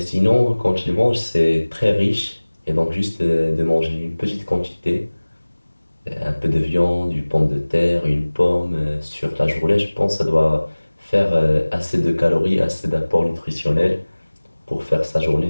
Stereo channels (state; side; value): inverted; both; correlation -1.00